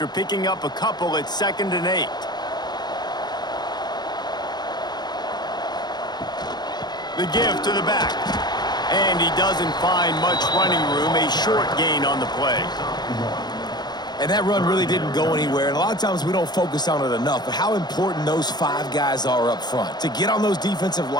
picking up a couple, it's 2nd and 8. The give to the back. And he doesn't find much running room, a short gain on the play. And that run really didn't go anywhere, and a lot of times we don't focus on it enough, but how important those 5 guys are up front. To get on those defensive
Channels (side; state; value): right; late; 0.20 ms